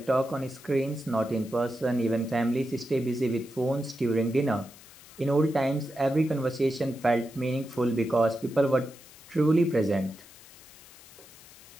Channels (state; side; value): noise; left; hiss, 21 dB below the sound